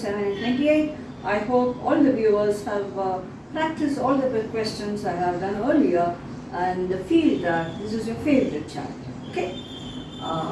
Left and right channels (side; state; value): both; identical; correlation 1.00